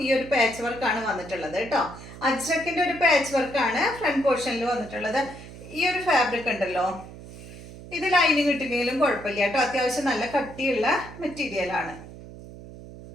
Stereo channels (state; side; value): noise; right; hum, 15 dB below the sound